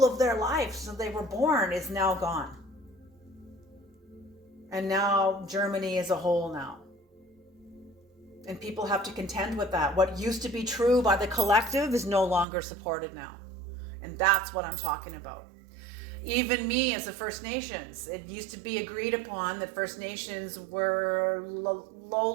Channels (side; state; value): left; drops out; at 12.5 s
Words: of their life since they were born is now gone. And now Germany is a whole now. And people have to contend with that. What used to be true by the collective is no longer supported now. And that's what I'm talking about. Even me as a First Nations, it used to be agreed upon that First Nations were